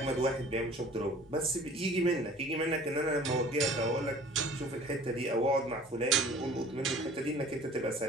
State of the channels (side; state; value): both; normal; correlation 0.48